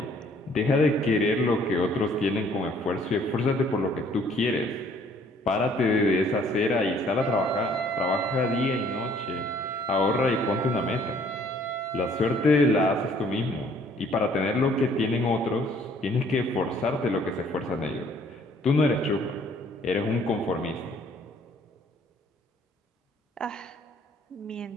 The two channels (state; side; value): normal; both; correlation 0.60